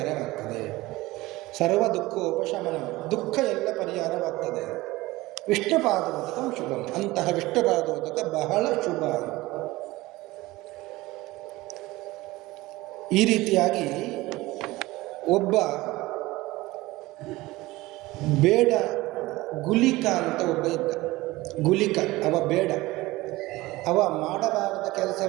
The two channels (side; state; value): left; quieter; 19.5 dB